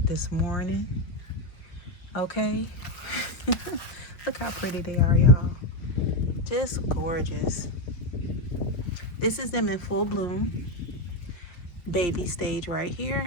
this morning. Okay. Look how pretty they are, y'all. Just gorgeous. This is them in full bloom. Baby stage right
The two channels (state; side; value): late; right; 5.7 ms